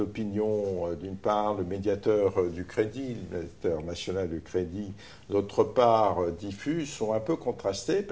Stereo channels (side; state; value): both; identical; correlation 1.00